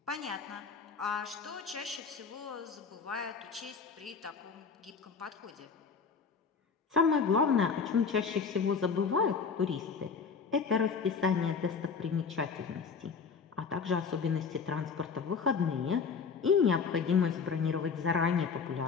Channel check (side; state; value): right; quieter; 5.6 dB